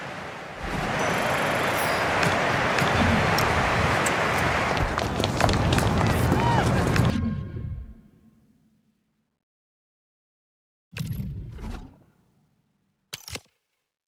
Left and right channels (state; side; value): identical; both; correlation 1.00